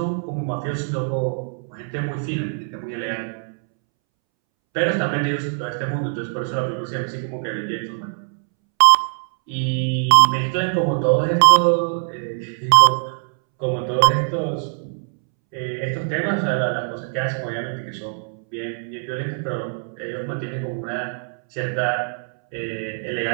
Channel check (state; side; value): silent; left; 64 dB below the other